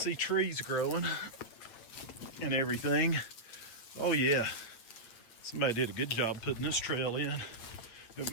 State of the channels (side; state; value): right; late; 8.8 ms